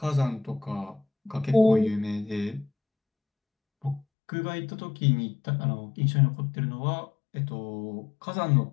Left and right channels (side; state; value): right; drops out; at 4.0 s